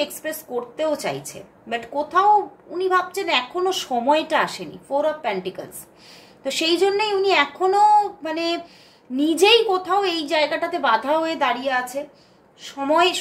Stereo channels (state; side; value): identical; both; correlation 1.00